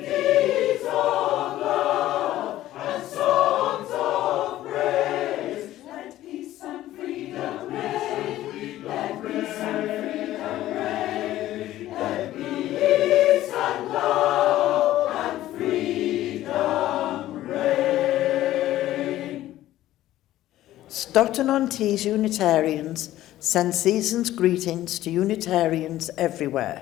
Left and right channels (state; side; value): quieter; right; 14.4 dB